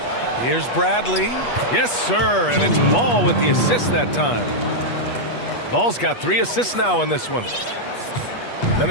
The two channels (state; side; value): late; right; 8.3 ms